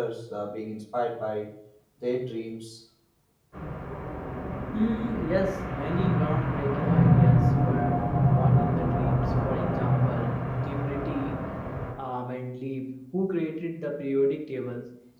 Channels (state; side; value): identical; both; correlation 1.00